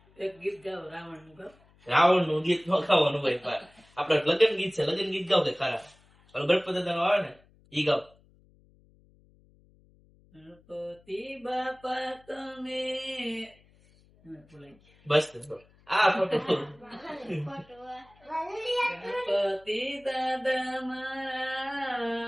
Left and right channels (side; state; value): left; noise; hum, 30 dB below the sound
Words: એક ગીત ગાવ રાવણ નું ગાવ. રાવણ નું ગીત નો ગાવાનું હોય. આપડે લગ્ન ગીત છે, લગ્ન ગીત ગાવ કે ખરા. ગણપતિ દાદા નું આવે ને ઈ ગાવ. ગણપતિ બાપા તમે બસ આ ફોટો ગણપતિ દાદા મારા